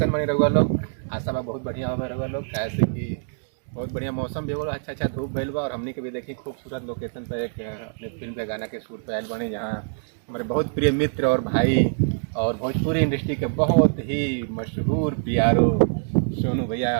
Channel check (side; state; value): left; silent; digital silence